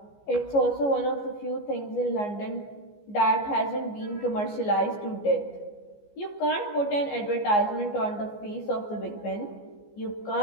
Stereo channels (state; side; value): late; right; 14 ms